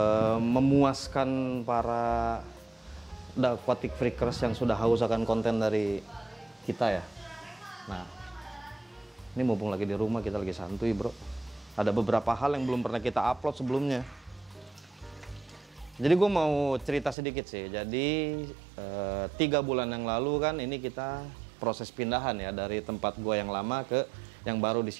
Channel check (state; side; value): drops out; left; at 17.2 s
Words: Memuaskan para The Aquatic Freakers yang sudah haus akan konten dari kita ya. Nah, ini mumpung lagi di rumah, kita lagi santuy bro. Ada beberapa hal yang belum pernah kita upload sebelumnya. Jadi gue mau cerita sedikit sih. Jadi 3 bulan yang lalu kan ini kita proses pindahan ya dari tempat gue yang lama ke yang baru di